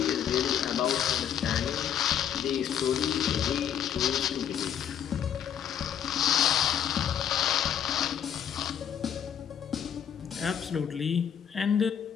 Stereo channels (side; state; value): right; quieter; 8.9 dB